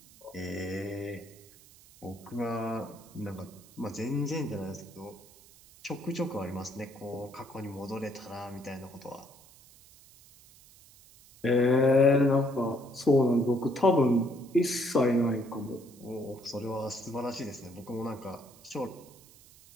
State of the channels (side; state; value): right; noise; hiss, 24 dB below the sound